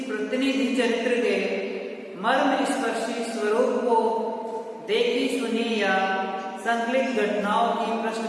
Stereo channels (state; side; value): identical; both; correlation 1.00